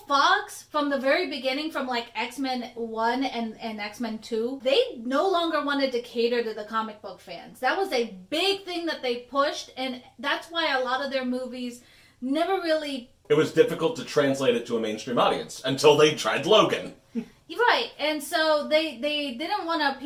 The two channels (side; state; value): both; identical; correlation 1.00